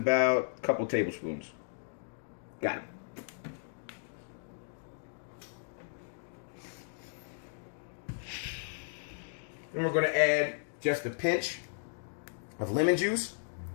a couple tablespoons. Got it. Then we're going to add just a pinch of lemon juice.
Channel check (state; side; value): silent; right; digital silence